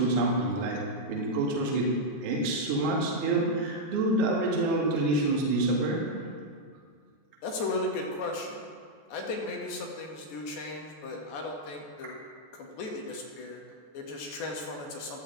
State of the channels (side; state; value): right; late; 14 ms